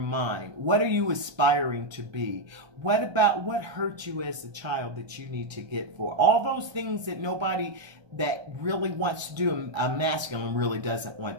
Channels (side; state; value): left; late; 1.3 ms